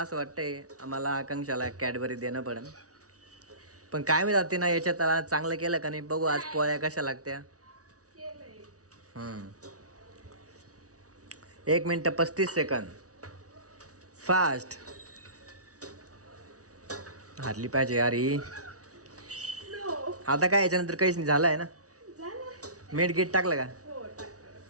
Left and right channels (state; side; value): late; left; 0.67 ms